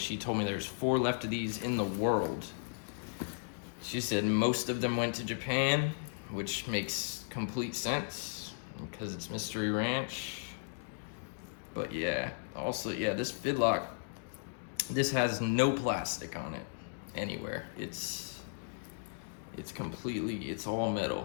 told me there's 4 left of these in the world. She said most of them went to Japan, which makes complete sense because it's Mystery Ranch. But yeah, also, yeah, this fidlock, this has no plastic on it anywhere. It's completely, it's all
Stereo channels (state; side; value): silent; right; digital silence